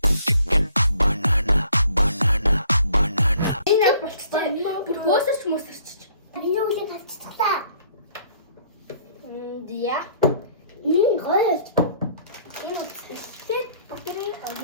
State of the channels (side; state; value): both; inverted; correlation -0.59